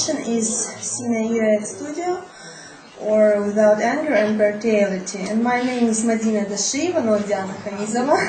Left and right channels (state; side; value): identical; both; correlation 1.00